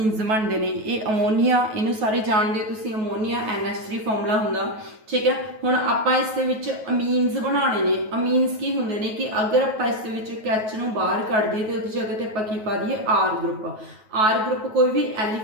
बनते हैं ये अमोनीआ इनू सारे जानते हो तुसीं अमोनीआ NH3 फॉर्मूला हुंदा ठीक है। हुण आपां इस दे विच अमीन्स बनाने ने अमीन्स की हुंदे ने कि अगर आपां इस दे विच H नूं बाहर कढ दईए तो उहदी जगह ते आपां की पा दईए R ग्रुप कोई भी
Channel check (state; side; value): late; left; 9.3 ms